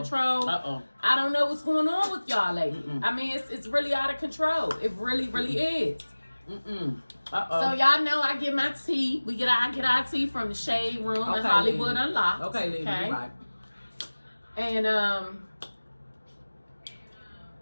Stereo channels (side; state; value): both; inverted; correlation -1.00